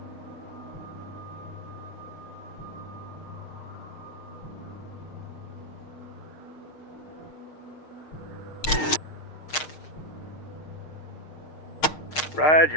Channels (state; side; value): late; right; 6.5 ms